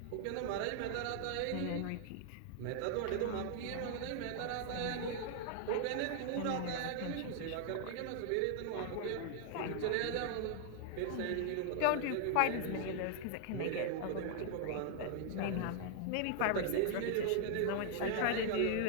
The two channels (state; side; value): different; both; correlation 0.00